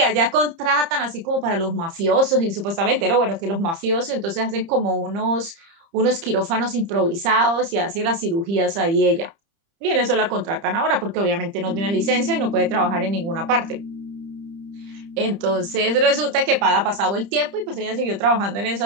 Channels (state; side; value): late; left; 30 ms